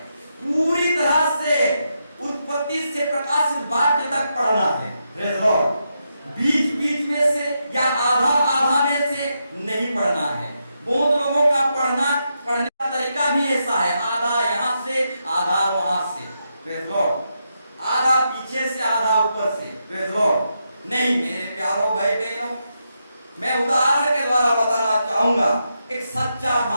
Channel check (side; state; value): both; inverted; correlation -0.83